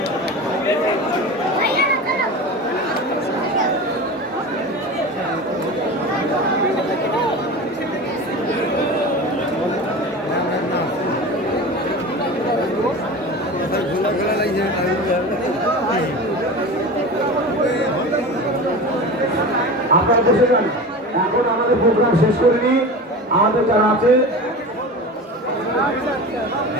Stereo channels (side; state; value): both; normal; correlation 0.31